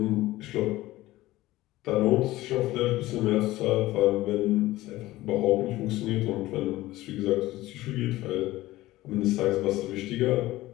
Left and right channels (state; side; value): quieter; right; 17.2 dB